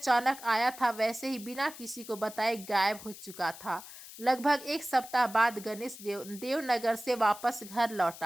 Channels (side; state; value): left; noise; hiss, 15 dB below the sound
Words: आया था वैसे ही बिना किसी को बताए गायब हो चुका था। लगभग 1 सप्ताह बाद गणेश देवनगर से वापस घर